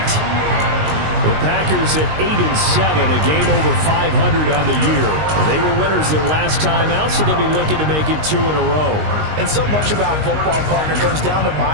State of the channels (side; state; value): left; late; 19 ms